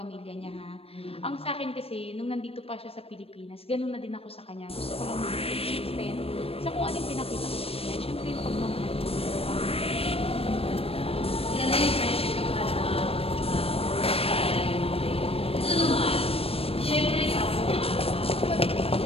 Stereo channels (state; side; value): late; right; 0.28 ms